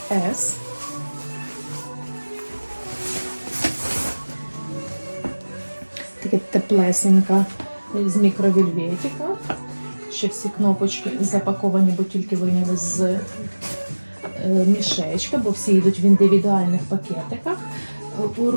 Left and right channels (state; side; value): inverted; both; correlation -1.00